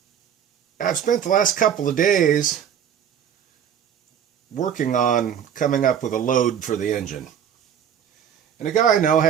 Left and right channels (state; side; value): quieter; left; 8.7 dB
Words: I've spent the last couple of days working on coming up with a load for the engine. And a guy I know